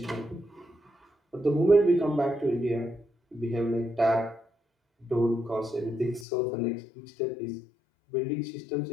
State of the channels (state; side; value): drops out; right; at 6.2 s